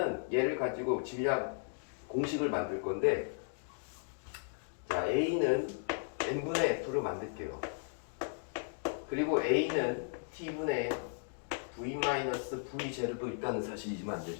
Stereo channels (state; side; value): silent; right; digital silence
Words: 얘를 가지고 질량 공식을 만들 건데, 자, A는 n분의 F를 만들게요. 그리고 A는 T분의 V-V제로도 있다는 사실이지만 안